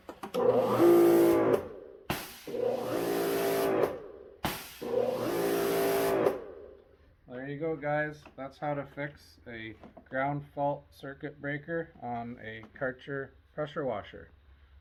There you go, guys. That's how to fix a ground fault circuit breaker on a Karcher pressure washer.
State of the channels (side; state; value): both; identical; correlation 1.00